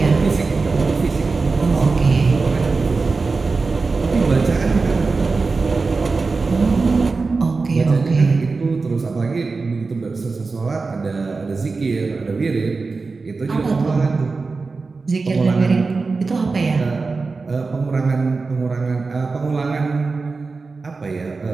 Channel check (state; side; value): quieter; left; 4.1 dB